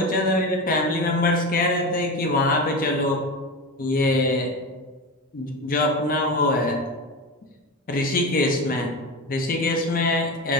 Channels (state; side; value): normal; both; correlation 0.23